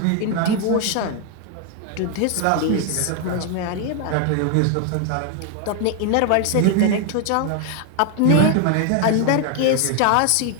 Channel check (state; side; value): different; both; correlation 0.00